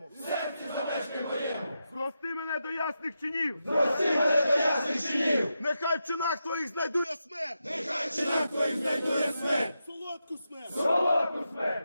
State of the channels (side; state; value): both; inverted; correlation -0.88